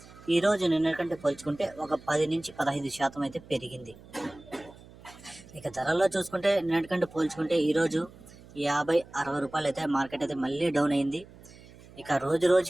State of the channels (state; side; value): noise; right; hum, 21 dB below the sound